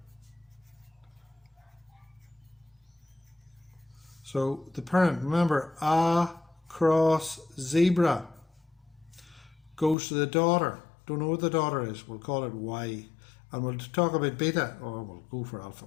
So the parent, remember, A cross zebra goes to the daughter. Don't know what the daughter is. We'll call it Y. And we'll talk about beta, or we'll go for alpha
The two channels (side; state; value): right; drops out; at 10.0 s